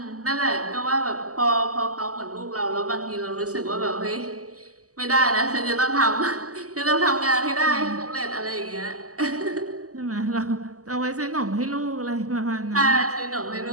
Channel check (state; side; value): late; left; 0.66 ms